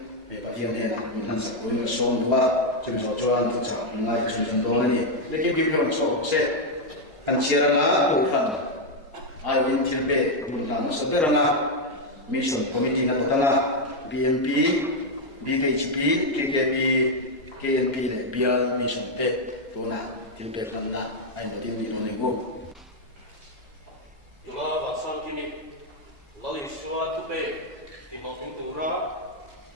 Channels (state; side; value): normal; both; correlation 0.01